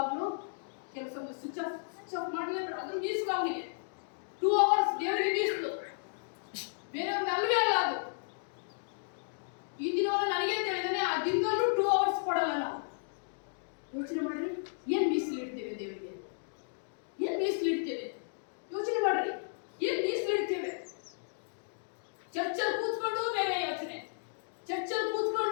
ಕೆಲಸ ಸ್ವಿಚ್ ಆಫ್ ಮಾಡಲೇಬೇಡ. ಅದು ಮೀಸಲು ಅವನಿಗೆ 2 hours ದೇವರಿಗೆ ಮೀಸಲು, ಬೇರೆಯವ್ರಿಗೆ ಅಲ್ವೇ ಅಲ್ಲ. ಅದು ಈ ದಿನವನ್ನು ನನಗೆ ತಿಳಿದಾನೆ, ಆ ದಿನದಲ್ಲೂ 2 hours ಕೊಡಲ್ಲ ನಾವು. ಯೋಚನೆ ಮಾಡ್ರಿ, ಏನ್ ಮೀಸಲು ಇಡ್ತೇವೆ ದೇವರಿಗೆ? ಏನ್ ಮೀಸಲು ಇಡ್ತೇವೆ? ಯೋಚನೆ ಮಾಡ್ರಿ, ಏನ್ ಮೀಸಲು ಇಡ್ತೇವೆ? ಚರ್ಚಲ್ಲಿ ಕೂತ್ಕೊಂಡು ಬೇರೆ ಯೋಚನೆ, ಚರ್ಚಲ್ಲಿ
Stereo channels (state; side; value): silent; right; digital silence